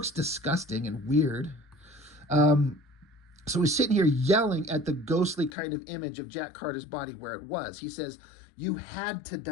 disgusting and weird. So he's sitting here yelling at the ghostly kind of image of Jack Carter's body where it was. He says, you had to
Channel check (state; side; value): drops out; right; at 5.5 s